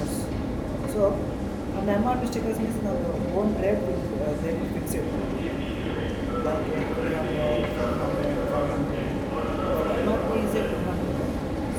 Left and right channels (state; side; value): identical; both; correlation 1.00